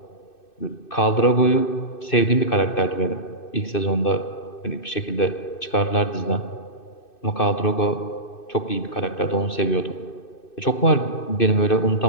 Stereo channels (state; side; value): late; right; 2.6 ms